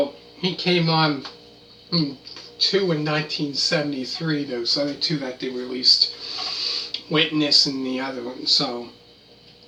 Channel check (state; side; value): identical; both; correlation 1.00